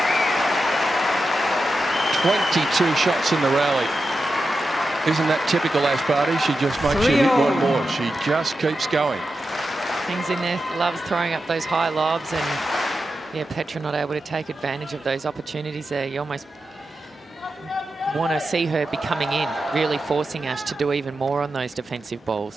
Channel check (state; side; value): normal; both; correlation 0.90